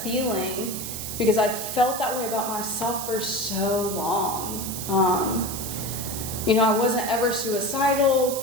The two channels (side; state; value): right; noise; hiss, 6 dB below the sound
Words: feeling, because I felt that way about myself for so long. You know, I wasn't ever suicidal